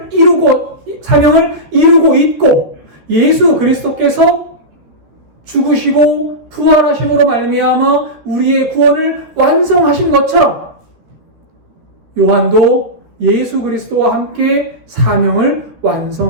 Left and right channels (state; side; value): late; left; 13 ms